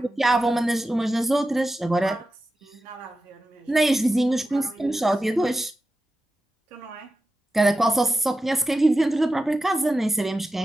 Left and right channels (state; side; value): normal; both; correlation 0.92